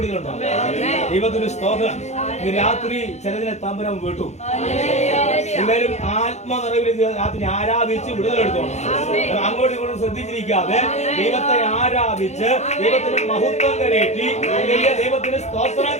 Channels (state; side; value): late; right; 0.33 ms